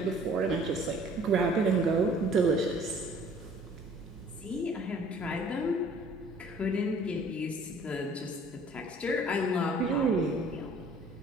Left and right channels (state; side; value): normal; both; correlation 0.54